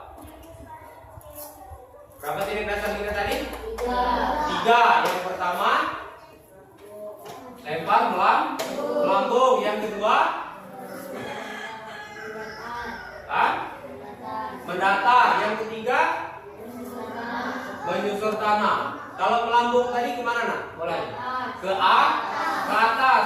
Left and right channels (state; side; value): identical; both; correlation 1.00